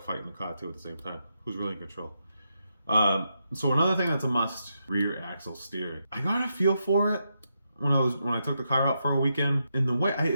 fighting the car too at the same time. Who's really in control? So another thing that's a must: rear axle steering. I got a feel for it when I took the car out for a weekend. In the way,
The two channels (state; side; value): inverted; both; correlation -0.83